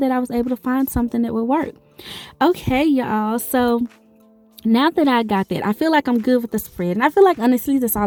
I was able to find something that would work. Okay, y'all, so now that I got that, I feel like I'm good with the spread, and I feel like honestly that's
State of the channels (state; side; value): identical; both; correlation 1.00